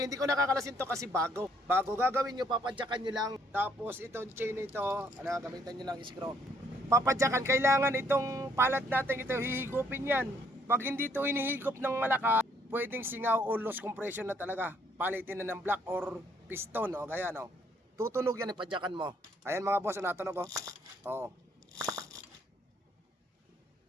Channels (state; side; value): normal; both; correlation 0.66